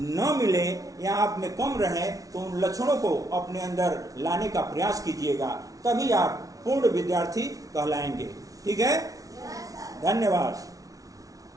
मिले या आप में कम रहे तो उन लक्षणों को अपने अंदर लाने का प्रयास कीजिएगा, तभी आप पूर्ण विद्यार्थी कहलाएंगे। ठीक है। धन्यवाद।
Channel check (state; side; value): late; left; 0.17 ms